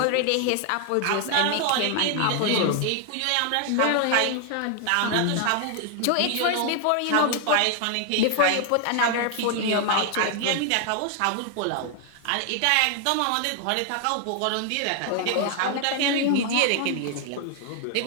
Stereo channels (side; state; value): both; different; correlation 0.00